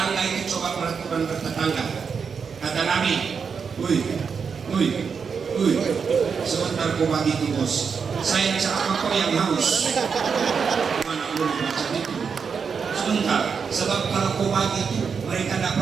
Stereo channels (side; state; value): left; quieter; 6.0 dB